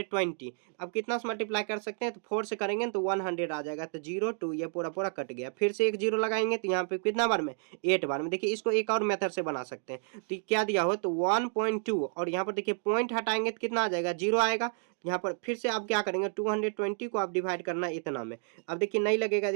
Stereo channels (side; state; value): left; silent; 57 dB below the other